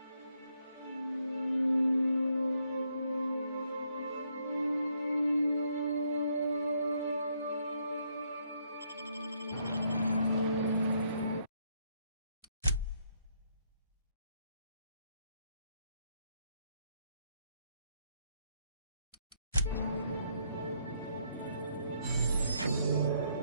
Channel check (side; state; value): both; inverted; correlation -0.73